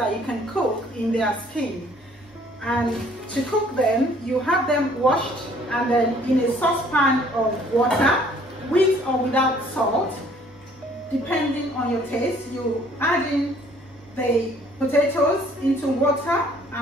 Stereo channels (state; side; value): normal; both; correlation 0.59